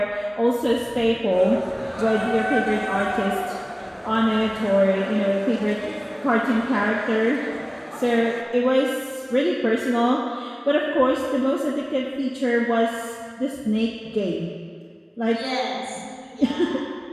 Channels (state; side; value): identical; both; correlation 1.00